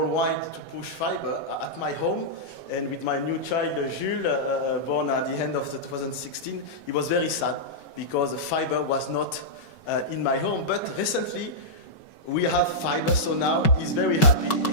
to push fiber at my home, and with my new child, Jules, born at the end of 2016, it was very sad because fiber was not in my home. But recently, we have fiber, so now he's very happy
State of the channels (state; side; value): late; right; 5.3 ms